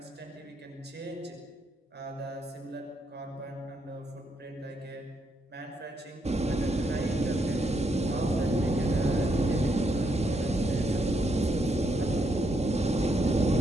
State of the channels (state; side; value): normal; both; correlation 0.77